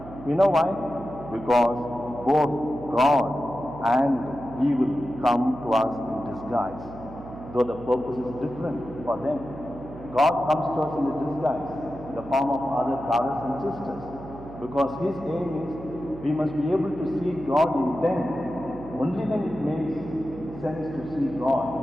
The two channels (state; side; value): noise; right; hum, 14 dB below the sound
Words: You know why? Because both God and evil come to us in disguise, though the purpose is different for them. God comes to us in a disguise, in the form of other brothers and sisters, because His aim is we must be able to see God in them. Only then it makes sense to see